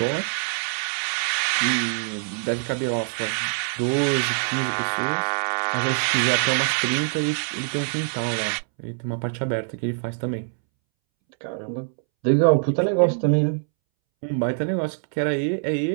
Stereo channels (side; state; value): left; silent; 63 dB below the other